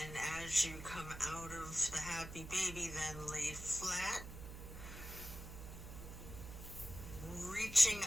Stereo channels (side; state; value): right; noise; hum, 11 dB below the sound